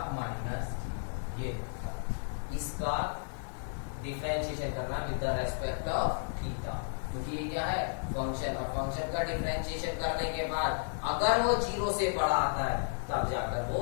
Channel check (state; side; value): silent; right; digital silence